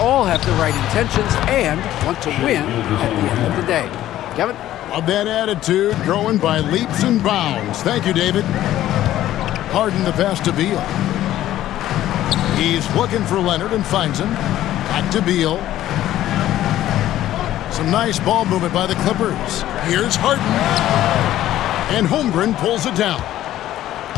have the right intentions and want to win at the end of the day. Kevin? Love that attitude, growing by leaps and bounds. Thank you, David. Harden the pass to Beal. He's looking for Leonard and finds him. Back to Beal. Some nice ball movement by the Clippers. Here's Harden. And Holmgren pulls it down.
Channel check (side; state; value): right; quieter; 13.4 dB